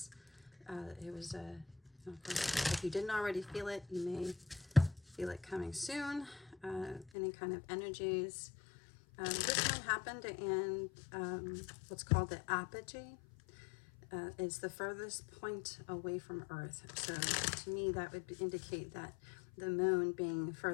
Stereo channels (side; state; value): right; drops out; at 7.1 s